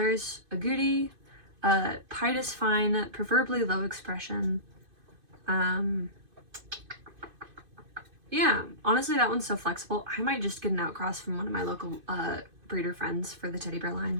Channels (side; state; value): left; late; 2.5 ms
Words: agouti, pied is fine, preferably low expression. Yeah, honestly, that one's so flexible. I might just get an outcross from one of my local breeder friends for the teddy bear